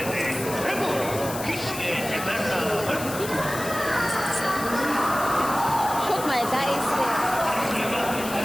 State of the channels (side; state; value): left; noise; hiss, 10 dB below the sound